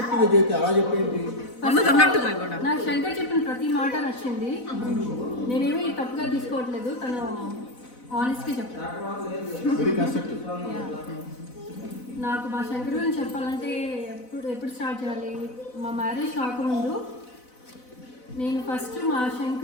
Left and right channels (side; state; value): right; late; 4.0 ms